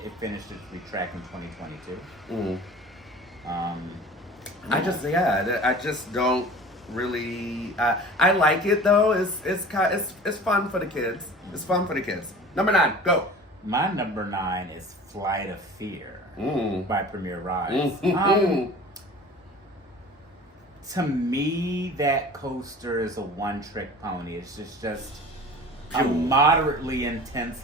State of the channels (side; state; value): both; normal; correlation 0.41